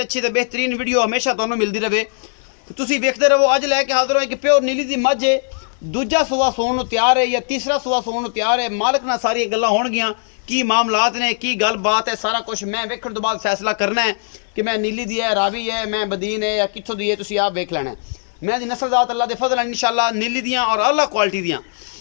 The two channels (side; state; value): right; silent; digital silence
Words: ਅੱਛੀ ਤੇ ਬਿਹਤਰੀਨ ਵੀਡੀਓ ਹਮੇਸ਼ਾ ਤੁਹਾਨੂੰ ਮਿਲਦੀ ਰਹੇ। ਤੁਸੀਂ ਵੇਖਦੇ ਰਹੋ। ਅੱਜ ਲੈ ਕੇ ਹਾਜ਼ਰ ਹਾਂ ਕਿ ਪਿਓਰ ਨੀਲੀ ਦੀ ਮੱਝ ਹੈ, ਦੂਜਾ ਸੂਆ ਸੌਣ ਨੂੰ ਤਿਆਰ ਹੈ ਜਾਂ ਤੀਸਰਾ ਸੂਆ ਸੌਣ ਨੂੰ ਤਿਆਰ ਹੈ। ਮਾਲਕ ਨਾਲ ਸਾਰੀਆਂ ਗੱਲਾਂ ਹੋਣਗੀਆਂ, ਕੀ ਮਾਮਲਾਤ ਨੇ, ਕੀ ਗੱਲਬਾਤ ਹੈ, ਸਾਰਾ ਕੁਝ ਮੈਂ ਵੇਖਣ ਤੋਂ ਬਾਅਦ ਫੈਸਲਾ ਕਰਨਾ ਹੈ ਕਿ ਮੈਂ ਨੀਲੀ ਦੀ ਹੈ, ਰਾਵੀ ਹੈ, ਮੈਂ ਬਦੀਨ ਹੈ ਜਾਂ ਕਿੱਥੋਂ ਦੀ ਹੈ। ਤੁਸੀਂ ਆਪ ਵੇਖ ਲੈਣਾ। मैं दी नस्लजात अल्लाह दे फजल इंशाअल्लाह नीली दियाँ और अल्लाह क्वालिटी दियाँ